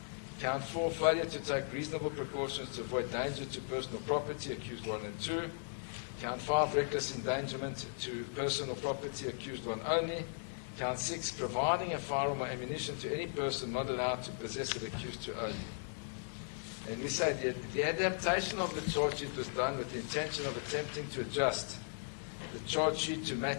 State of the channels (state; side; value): silent; right; digital silence